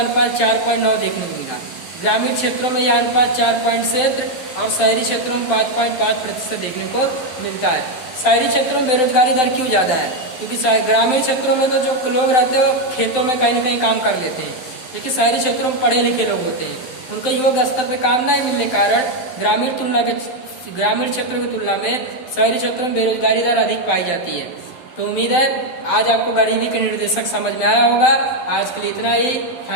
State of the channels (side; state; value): right; late; 12 ms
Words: 4.9 देखने को मिला। ग्रामीण क्षेत्रों में यह अनुपात 4.7 और शहरी क्षेत्रों में 5.5% देखने को मिलता है। शहरी क्षेत्रों में बेरोजगारी दर क्यों ज़्यादा है, क्योंकि ग्रामीण क्षेत्रों में तो जो लोग रहते हैं वो खेतों में कहीं ना कहीं काम कर लेते हैं, लेकिन शहरी क्षेत्रों में पढ़े लिखे लोग होते हैं, उनके योग्य स्तर पर काम नहीं मिलने के कारण ग्रामीण क्षेत्रों की तुलना में शहरी क्षेत्रों में बेरोजगारी दर अधिक पाई जाती है। तो उम्मीद है आज आपको गरीबी के निर्देशक समझ में आया होगा। आज के लिए इतना ही।